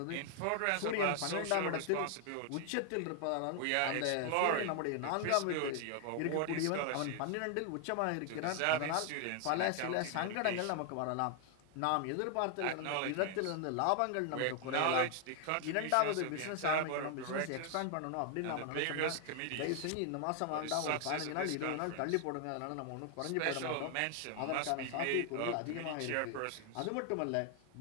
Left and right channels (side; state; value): both; different; correlation 0.00